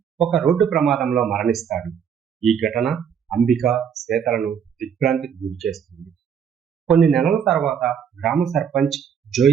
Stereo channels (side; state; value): left; quieter; 7.8 dB